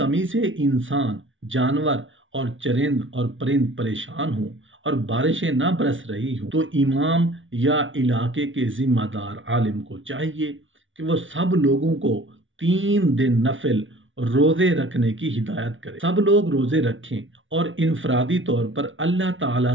سے انسان، جانور اور چرند اور پرند پریشان ہوں اور بارشیں نہ برس رہی ہوں تو امام یا علاقے کے ذمہ دار عالم کو چاہیے کہ وہ سب لوگوں کو 3 دن نفل روزے رکھنے کی ہدایت کرے۔ سب لوگ روزے رکھیں اور انفرادی طور پر اللہ تعالیٰ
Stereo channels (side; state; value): left; late; 0.56 ms